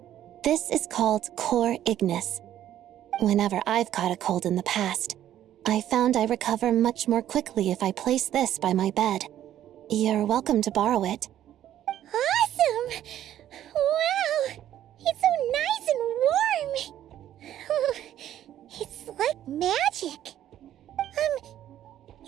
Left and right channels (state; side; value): quieter; left; 11.8 dB